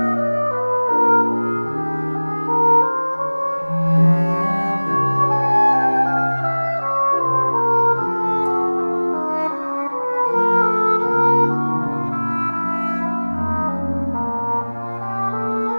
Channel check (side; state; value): both; inverted; correlation -1.00